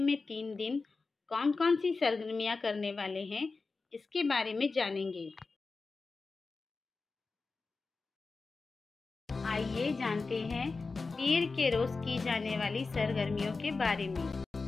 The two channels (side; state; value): right; quieter; 4.0 dB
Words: 3 दिन कौन कौन सी सरगर्मियाँ करने वाले हैं, इसके बारे में जानेंगे। आइए जानते हैं पीर के रोज की जाने वाली सरगर्मियों के बारे में।